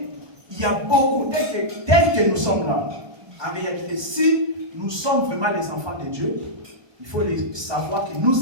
y a beaucoup, tel que nous sommes là, en réalité, si nous sommes vraiment les enfants de Dieu, il faut savoir que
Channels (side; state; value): left; late; 1.2 ms